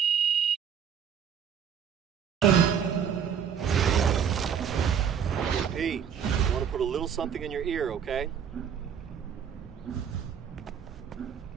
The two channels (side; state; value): left; quieter; 7.9 dB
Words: Pete, I want to put a little something in your ear, okay?